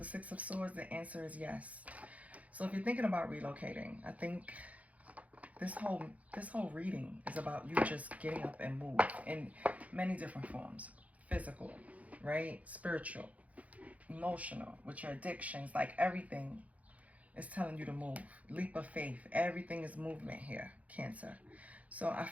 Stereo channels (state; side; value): late; left; 0.069 ms